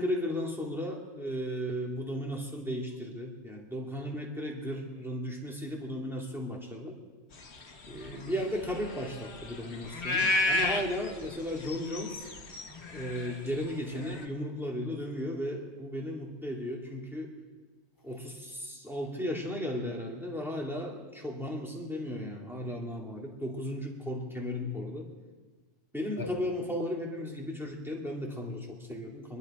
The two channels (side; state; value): both; normal; correlation 0.46